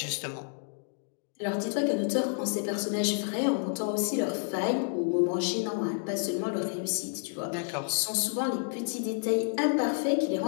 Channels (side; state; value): right; silent; 58 dB below the other